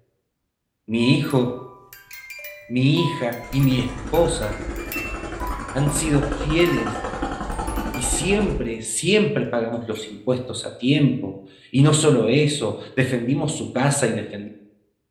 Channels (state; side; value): identical; both; correlation 1.00